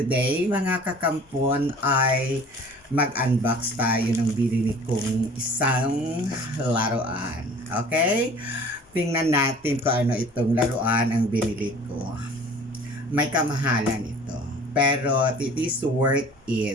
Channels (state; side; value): normal; both; correlation 0.47